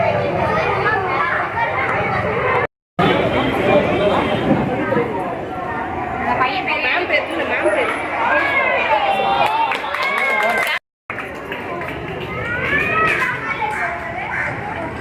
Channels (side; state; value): both; identical; correlation 1.00